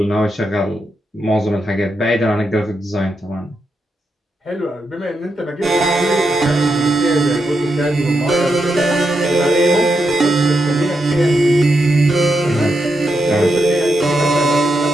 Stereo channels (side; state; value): both; normal; correlation 0.84